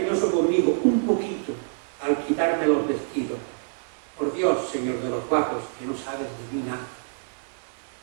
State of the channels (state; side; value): silent; left; digital silence